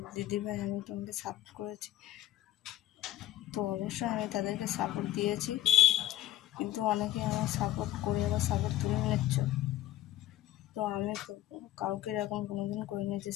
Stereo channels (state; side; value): quieter; right; 14.3 dB